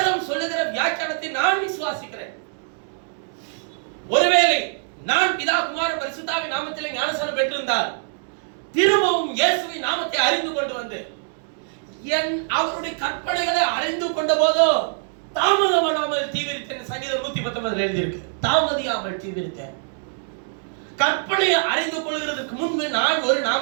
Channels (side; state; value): left; silent; 63 dB below the other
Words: சொல்லுகிற வியாக்கியானத்தை நான் விசுவாசிக்கிறேன். ஒருவேளை நான் பிதா குமாரன் பரிசுத்தாவின் நாமத்திலே ஞானஸ்நானம் பெற்றிருந்தால் திரும்பவும் இயேசுவின் நாமத்தை அறிந்து கொண்டு வந்து அவருடைய கற்பனைகளை அறிந்து கொண்ட போதோ தாமதமானால் தீவிரித்தேன். சங்கீதம் 119 எழுதியிருக்கு, தாமதியாமல் தீவிரித்தேன். கற்பனையை அறிந்து கொள்கிறதுக்கு முன்பு நான் ஒரு